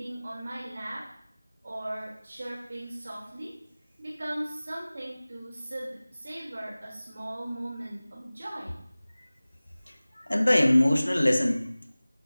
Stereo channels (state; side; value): inverted; both; correlation -0.99